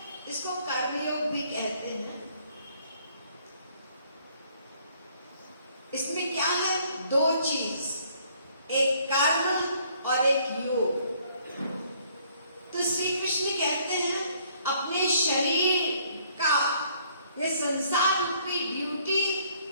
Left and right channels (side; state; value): both; inverted; correlation -0.63